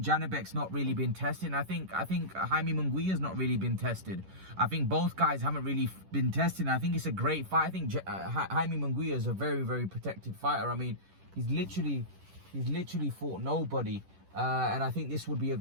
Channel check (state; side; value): late; left; 10 ms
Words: Janibek's not really been tested. And I think Jaime Munguia's not really been tested. I think both guys haven't really been tested. And I think it's a great fight. I think Jaime Munguia is a very, very protected fighter. I mean, he's literally fought nobody. And I think this would be a